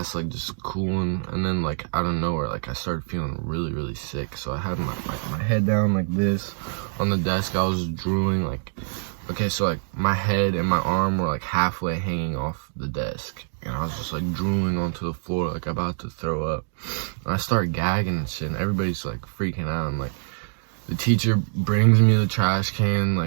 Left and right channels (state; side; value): silent; left; digital silence